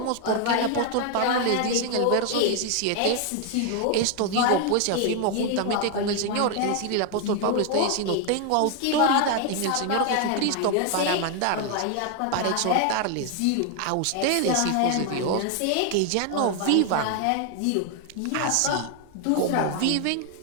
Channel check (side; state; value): both; different; correlation 0.01